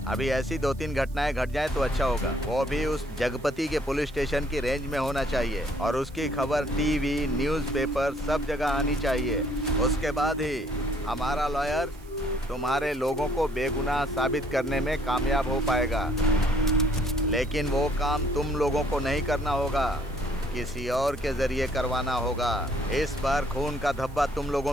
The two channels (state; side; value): noise; right; hiss, 26 dB below the sound